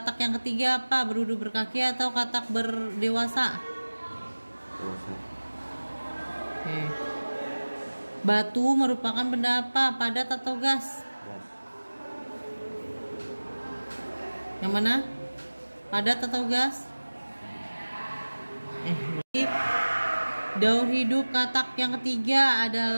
yang ketiga apa? Berudu berkaki atau katak berdewasa? Oke. Batu merupakan benda apa? Padat atau gas? Yang mana? Padat atau gas? Daur hidup katak yang ketiga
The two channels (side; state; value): both; inverted; correlation -1.00